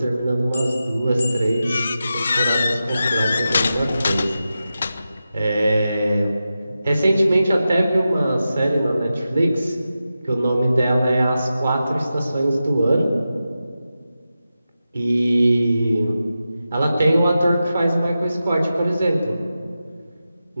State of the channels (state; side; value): inverted; both; correlation -0.91